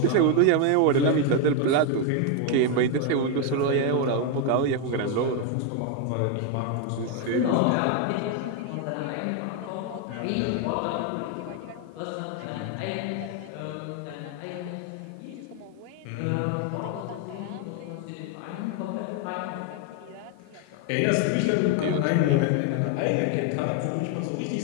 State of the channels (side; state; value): both; different; correlation 0.01